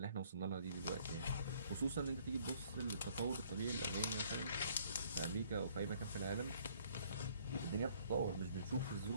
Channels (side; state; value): both; inverted; correlation -0.61